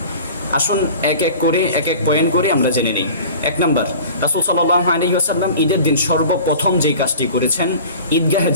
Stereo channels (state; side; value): inverted; both; correlation -0.41